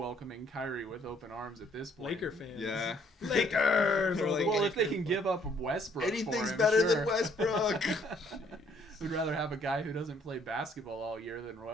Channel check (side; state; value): both; normal; correlation 0.64